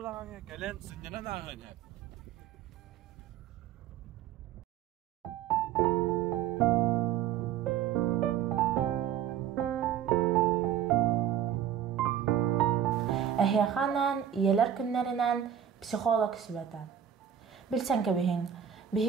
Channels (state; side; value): quieter; left; 9.5 dB